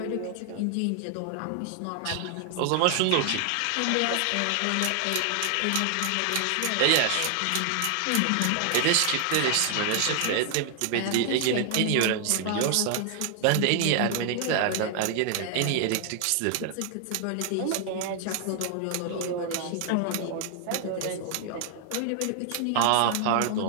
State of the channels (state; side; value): different; both; correlation 0.00